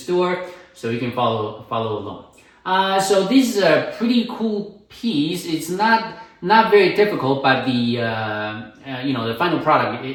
store, so you can follow along. So this is a pretty cool piece. It's not very difficult, but the the final product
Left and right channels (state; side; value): identical; both; correlation 1.00